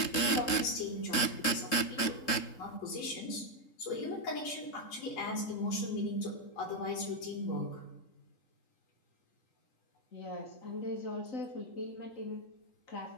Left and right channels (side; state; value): right; late; 3.7 ms